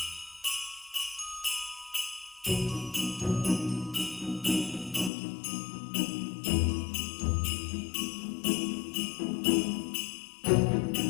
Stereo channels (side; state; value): right; drops out; at 5.1 s